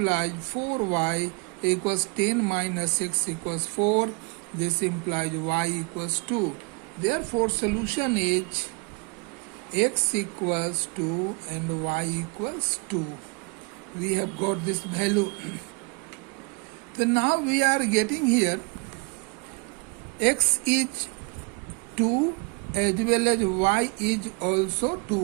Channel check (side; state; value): left; quieter; 31.6 dB